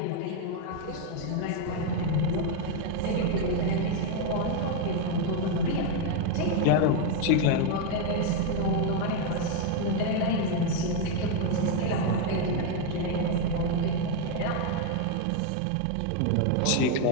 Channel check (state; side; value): different; both; correlation 0.01